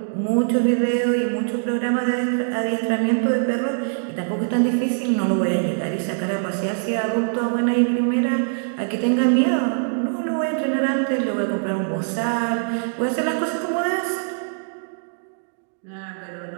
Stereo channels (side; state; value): left; silent; digital silence